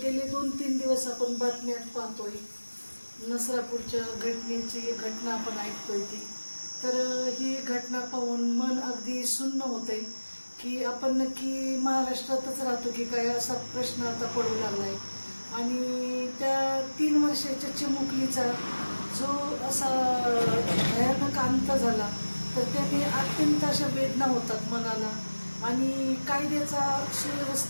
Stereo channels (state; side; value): inverted; both; correlation -1.00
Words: गेले 2-3 दिवस आपण बातम्यात पाहतोय, नसरापूरच्या घटना आपण ऐकतोय ती. तर ही घटना पाहून मन अगदी सुन्न होतंय की आपण नक्की महाराष्ट्रातच राहतो की काय, असा प्रश्न आता पडू लागलाय. आणि त्या 3 वर्षाच्या चिमुकलीचा जो असा भयानक अंत झाला, तर त्याने अत्यंत अशा वेदना होतात मनाला. आणि कायद्याचा,